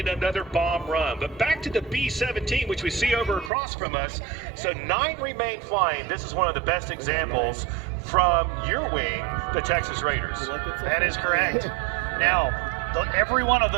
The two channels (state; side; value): drops out; left; at 3.5 s